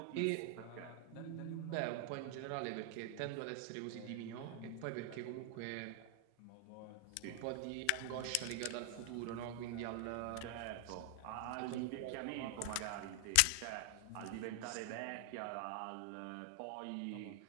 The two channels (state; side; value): different; both; correlation 0.00